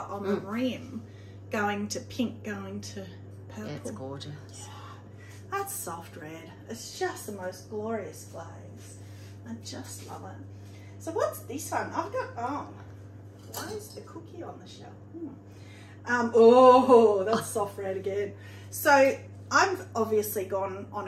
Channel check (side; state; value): both; identical; correlation 1.00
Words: on the rim, going to pink, going to purple. Yeah, it's gorgeous. Yeah. That's soft red. It's just the most glorious glaze. I just love it. So what's this one? I've got, why is the cookie on the shelf? Oh, that's soft red again. So I've obviously gone on